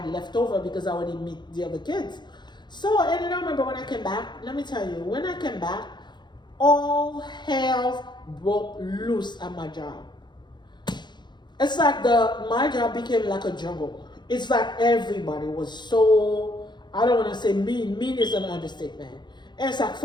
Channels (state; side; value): late; right; 0.21 ms